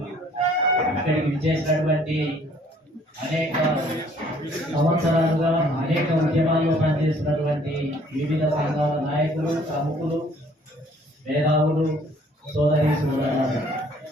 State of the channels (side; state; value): both; normal; correlation 0.59